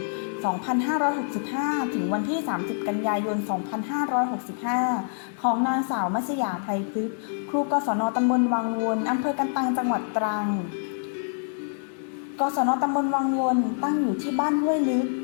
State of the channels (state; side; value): silent; right; digital silence